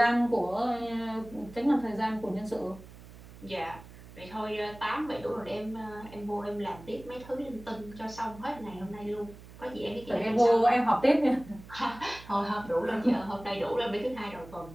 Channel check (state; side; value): noise; right; hum, 18 dB below the sound